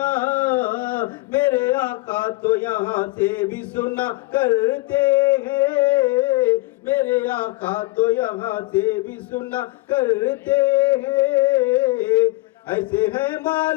میرے آقا تو یہاں سے بھی سنا کرتے ہیں، میرے آقا تو یہاں سے بھی سنا کرتے ہیں۔ ایسے ہیں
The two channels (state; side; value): quieter; right; 21.0 dB